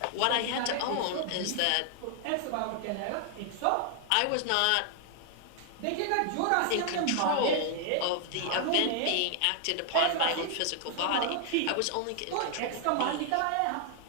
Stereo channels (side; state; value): both; different; correlation 0.00